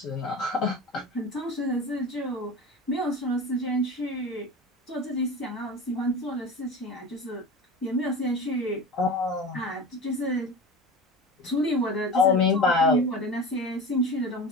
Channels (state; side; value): normal; both; correlation 0.31